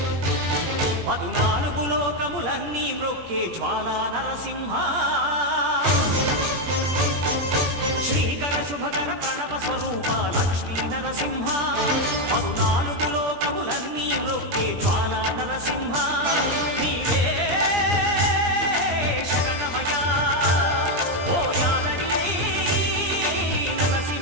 14 లోకములన్నీ మ్రొక్కే జ్వాలా నరసింహ శ్రీకర శుభకర ప్రణవ స్వరూప లక్ష్మీ నరసింహ 14 లోకములన్నీ మ్రొక్కే జ్వాలా నరసింహ నీవే శరణమయా ఓ యాదగిరి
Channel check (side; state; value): left; late; 17 ms